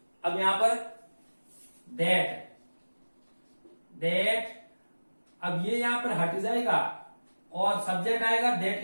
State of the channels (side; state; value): both; inverted; correlation -1.00